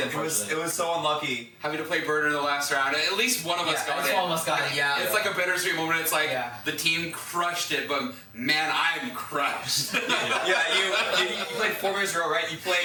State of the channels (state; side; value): identical; both; correlation 1.00